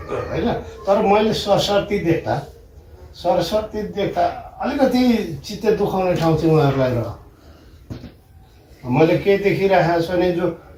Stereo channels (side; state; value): both; identical; correlation 1.00